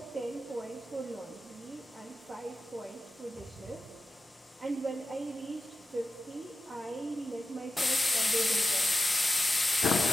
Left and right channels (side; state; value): both; normal; correlation 0.93